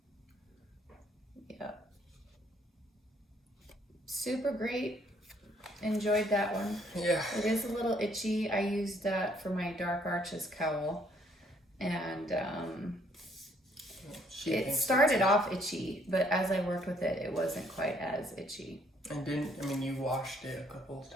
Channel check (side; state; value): both; normal; correlation 0.66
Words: Yep. Super great. Enjoyed that one. Yeah. It is a little itchy. I used that for my Dark Arches cowl. And it started off itchy, but as I worked with it, it wasn't quite as itchy. And you washed it a couple of